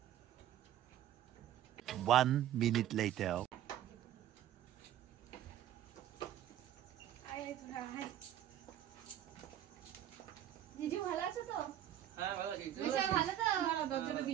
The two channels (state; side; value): quieter; left; 11.8 dB